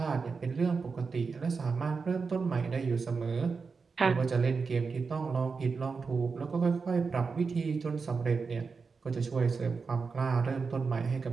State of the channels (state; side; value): quieter; left; 4.9 dB